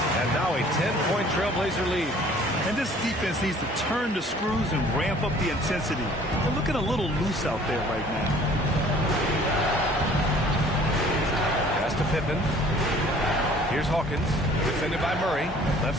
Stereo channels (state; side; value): normal; both; correlation 0.53